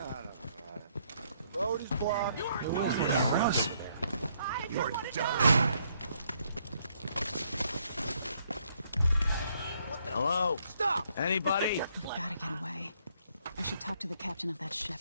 got it. The road is blocked. You aren't doing it, Empress. You're done. Hello? Stop! Anybody? We've gotta get away. I should talk to the captain of that ship.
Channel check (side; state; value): both; inverted; correlation -0.70